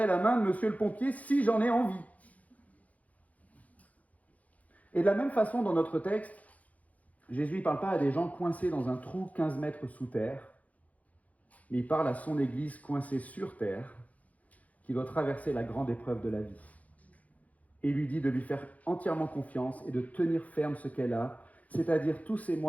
la main de monsieur le pompier si j'en ai envie. » Et de la même façon, dans notre texte, Jésus ne parle pas à des gens coincés dans un trou 15 mètres sous terre, mais il parle à son Église coincée sur terre, qui doit traverser la grande épreuve de la vie. Et il lui dit de lui faire entièrement confiance et de tenir ferme ce qu'elle a, c'est-à-dire tous ces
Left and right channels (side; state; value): right; late; 0.072 ms